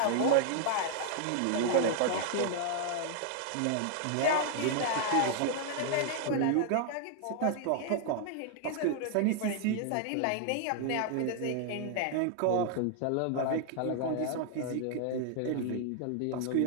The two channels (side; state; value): both; different; correlation 0.00